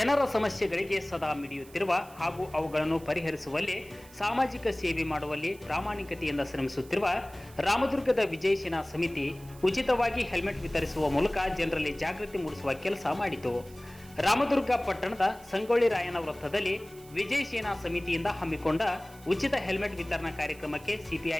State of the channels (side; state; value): right; noise; hiss, 22 dB below the sound